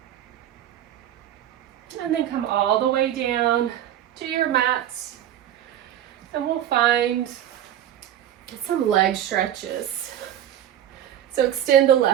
And then come all the way down to your mats. And we'll find some leg stretches. So extend the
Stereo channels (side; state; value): left; quieter; 11.3 dB